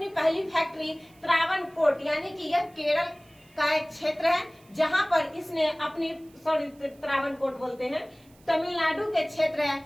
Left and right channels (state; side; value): noise; right; hiss, 30 dB below the sound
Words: पहली फैक्ट्री त्रावणकोट, यानी कि यह केरल का एक क्षेत्र है, जहां पर इसने अपनी त्रावणकोट बोलते हैं, तमिलनाडु के क्षेत्र है,